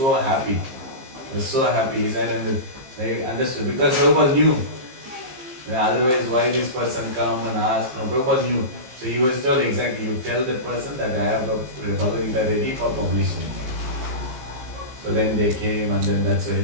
happy. He was so happy. He said, and they understood. Because Prabhupada knew. Otherwise, why this person come and ask? No, Prabhupada knew. So he was told exactly, you tell that person that I have a Bhagavad Gita ready for publishing. So then they came and then that's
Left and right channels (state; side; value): late; left; 15 ms